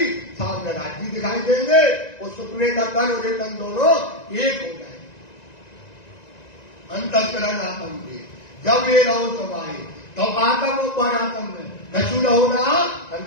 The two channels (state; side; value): late; right; 1.9 ms